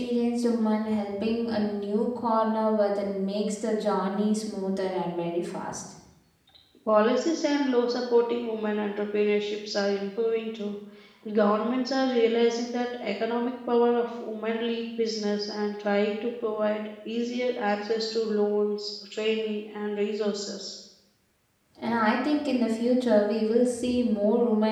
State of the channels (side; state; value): both; identical; correlation 1.00